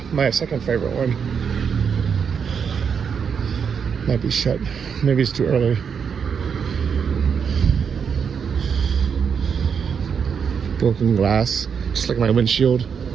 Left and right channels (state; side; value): quieter; left; 6.8 dB